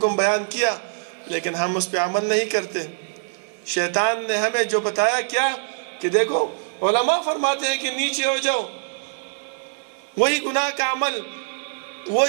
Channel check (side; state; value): left; silent; 63 dB below the other